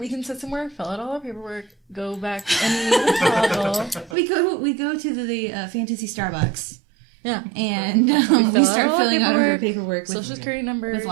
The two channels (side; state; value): left; drops out; at 4.2 s